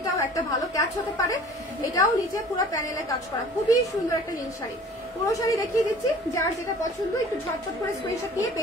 একটা ভালো ক্যাচ হতে পারে। এটাও নিচে পুরো প্যানেলে কাজ করা, খুবই সুন্দর একটা নীল শাড়ি। পুরো শাড়ি দেখিয়ে দিচ্ছি, যার যেটা পছন্দ একটু ঝটপট করে স্ক্রিনশট নিয়ে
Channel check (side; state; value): both; normal; correlation 0.47